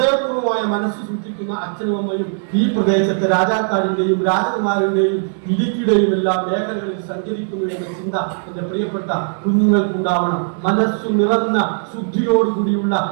മനസ്സ് സൂക്ഷിക്കുന്ന അച്ഛനും അമ്മയും ഈ പ്രദേശത്തെ രാജാക്കാടിന്റെയും രാജകുമാരന്റെയും ഇടുക്കിയുടെയും എല്ലാ മേഖലകളിൽ സഞ്ചരിക്കുന്നു എന്ന ചിന്ത എന്റെ പ്രിയപ്പെട്ട കുഞ്ഞുങ്ങൾക്കുണ്ടാവണം. മനസ്സു നിറഞ്ഞ ശുദ്ധിയോടുകൂടിയുള്ള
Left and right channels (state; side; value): silent; left; digital silence